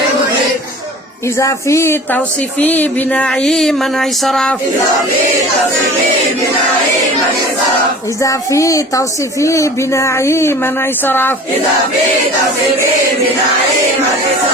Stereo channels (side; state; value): both; normal; correlation 0.42